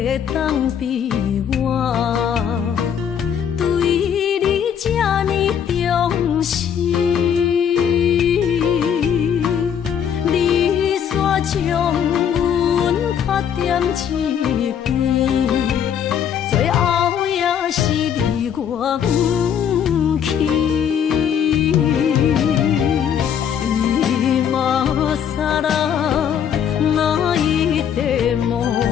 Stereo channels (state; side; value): quieter; right; 8.4 dB